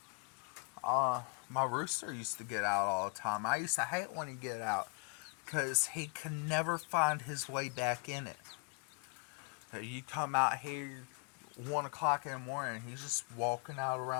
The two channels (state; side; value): quieter; right; 35.6 dB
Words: My rooster used to get out all the time. I used to hate when he'd get out, because he can never find his way back in it. You come out here 1 o'clock in the morning, he's just walking out